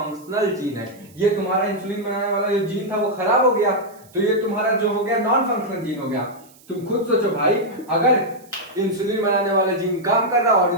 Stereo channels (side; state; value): right; noise; hiss, 27 dB below the sound